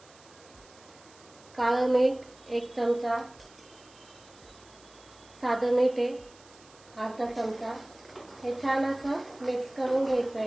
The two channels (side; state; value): right; noise; hiss, 25 dB below the sound